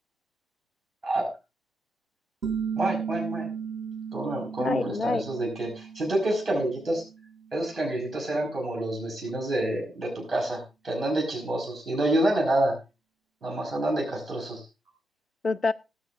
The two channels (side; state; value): both; normal; correlation 0.83